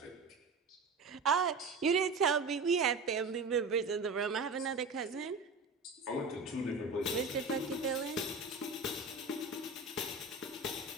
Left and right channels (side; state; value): left; quieter; 3.8 dB